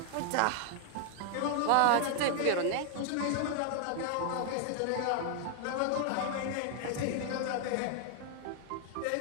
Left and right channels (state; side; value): different; both; correlation 0.00